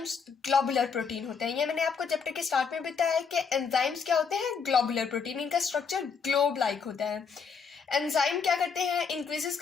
ग्लोबुलर प्रोटीन होते हैं। ये मैंने आपको चैप्टर के स्टार्ट में बताया है कि एंजाइम्स क्या होते हैं, ग्लोबुलर प्रोटीन। इनका स्ट्रक्चर ग्लोब लाइक होता है। एंजाइम क्या करते हैं, इंक्रीजेस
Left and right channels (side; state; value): right; quieter; 5.8 dB